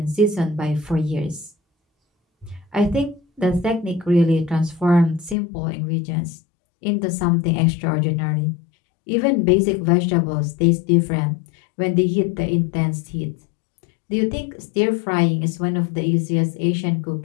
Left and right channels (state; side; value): drops out; right; at 5.4 s